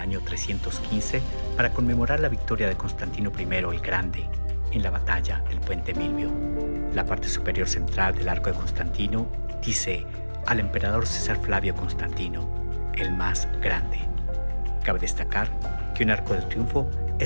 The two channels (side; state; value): both; inverted; correlation -1.00